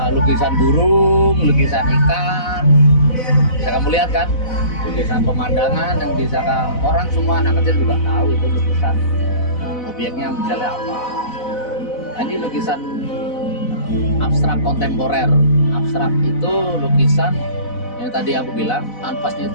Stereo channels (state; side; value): late; right; 4.0 ms